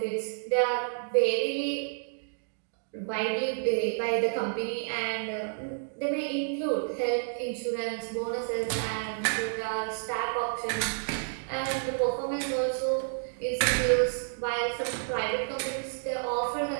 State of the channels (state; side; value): silent; left; digital silence